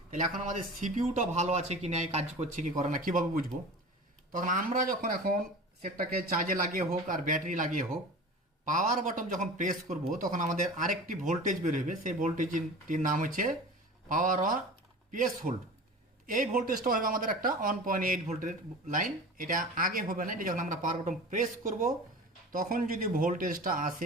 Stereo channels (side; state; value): both; normal; correlation 0.35